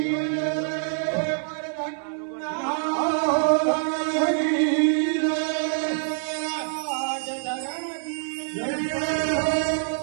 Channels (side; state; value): left; silent; 61 dB below the other